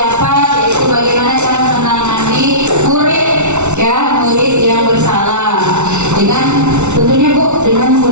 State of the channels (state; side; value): late; left; 0.82 ms